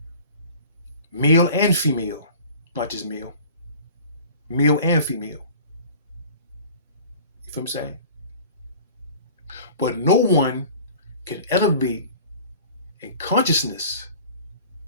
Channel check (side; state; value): both; inverted; correlation -0.44